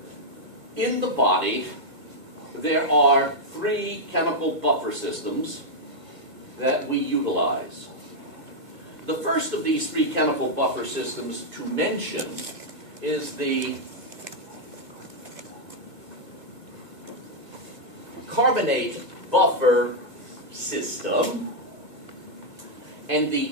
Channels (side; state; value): left; late; 2.4 ms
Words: In the body, there are 3 chemical buffer systems that we utilize. The first of these 3 chemical buffer systems to mention is the carbonate buffer system. And the